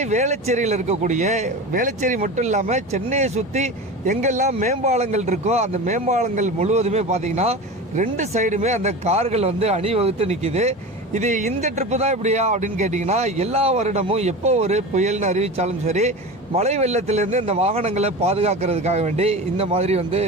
வேளச்சேரியில் இருக்கக்கூடிய வேளச்சேரி மட்டும் இல்லாமல் சென்னையை சுற்றி எங்கெல்லாம் மேம்பாலங்கள் இருக்கோ அந்த மேம்பாலங்கள் முழுவதுமே பார்த்தீங்கன்னா ரெண்டு சைடுமே அந்த கார்கள் அணிவகுத்து நிற்கிது. இது இந்த ட்ரிப்பு தான் இப்படியா அப்படின்னு கேட்டிங்கன்னா, எல்லா வருடமும் எப்போ ஒரு புயல்னு அறிவித்தாலும் சரி, மழை வெள்ளத்திலேருந்து இந்த வாகனங்களை பாதுகாக்கிறதுக்காக வேண்டி இந்த மாதிரி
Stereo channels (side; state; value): both; normal; correlation 0.29